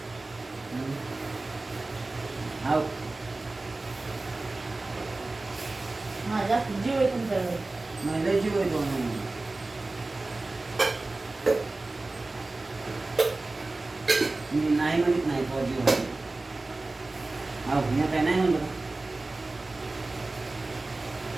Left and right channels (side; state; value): left; quieter; 3.1 dB